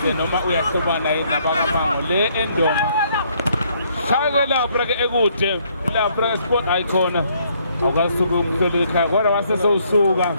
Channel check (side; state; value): both; inverted; correlation -0.68